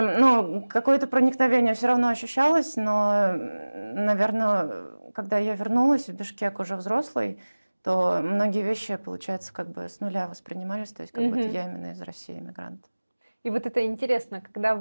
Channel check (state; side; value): inverted; both; correlation -1.00